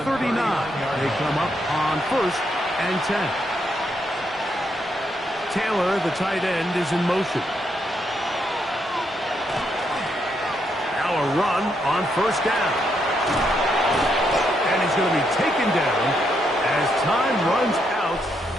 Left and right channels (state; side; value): normal; both; correlation 0.78